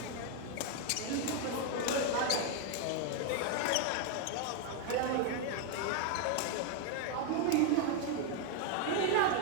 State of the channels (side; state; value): both; different; correlation 0.00